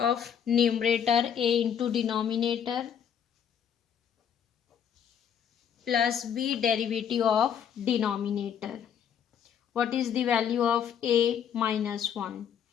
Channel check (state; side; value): quieter; right; 8.3 dB